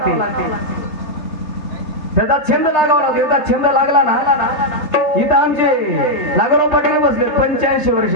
त्याचा छंद लागावा लागतो. याचा छंद लागला ना, इथं आमचे नागराव पाटील बसले 85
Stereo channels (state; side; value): late; right; 4.0 ms